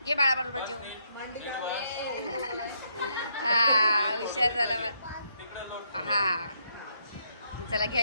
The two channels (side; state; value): both; inverted; correlation -0.75